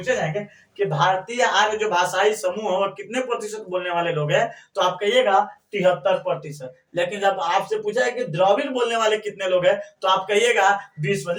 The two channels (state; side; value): identical; both; correlation 1.00